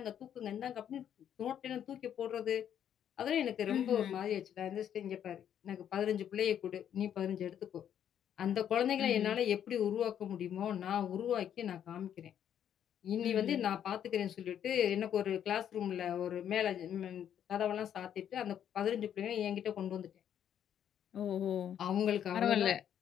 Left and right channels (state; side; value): quieter; right; 9.6 dB